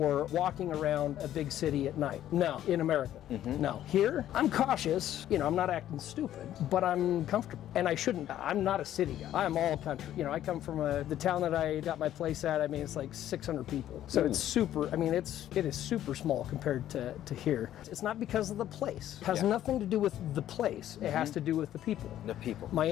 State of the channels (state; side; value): quieter; right; 12.1 dB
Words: walking around a big city at night? No, in America. Mm-hmm. No. Here, I'm cautious. I'm not acting stupid, but I'm comfortable. And I shouldn't. I'm not a city guy. I'm all country. I come from the town that I got my place at. I mean, it's like 600 people. So it's super. I mean, it is super small compared to here. It's not because of the place. It has nothing to do with the place. It has to do with the people. The people. My